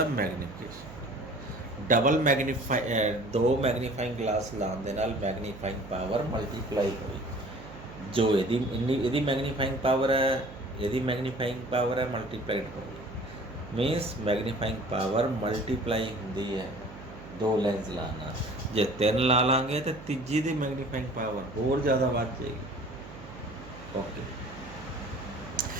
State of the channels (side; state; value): right; noise; hum, 15 dB below the sound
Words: magnification. Double दो मैग्नीफाइंग ग्लास लाने दे नाल मैग्नीफाइंग पावर मल्टीप्लाई हुई। जो यदि मैग्नीफाइंग पावर है, यदि मैग्नीफाइंग पावर है मल्टीप्लाइड होगी, मीनस मैग्नीफाइंग पावर मल्टीप्लाई होंदी है दो लेंस लाना। जे तीन ला लांगे तो तीजी दी मैग्नीफाइंग पावर होर ज़्यादा बढ़ जाएगी। ओके,